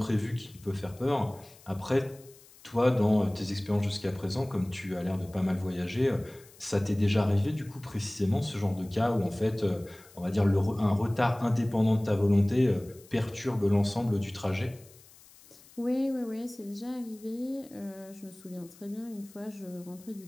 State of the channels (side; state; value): left; noise; hiss, 24 dB below the sound